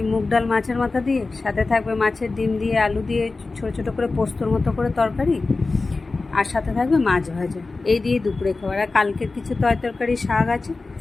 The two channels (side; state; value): right; quieter; 3.7 dB